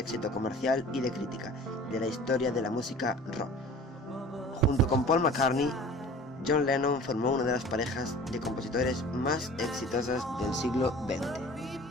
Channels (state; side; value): normal; both; correlation 0.45